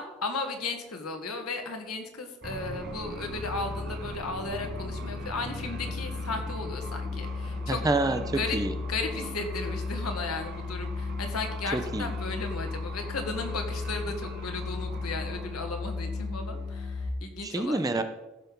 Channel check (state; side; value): normal; both; correlation 0.55